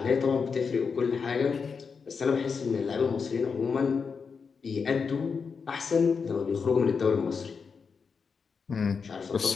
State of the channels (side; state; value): right; quieter; 5.6 dB